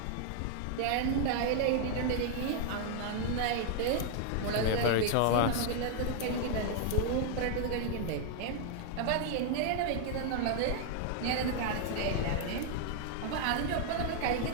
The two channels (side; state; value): both; different; correlation 0.00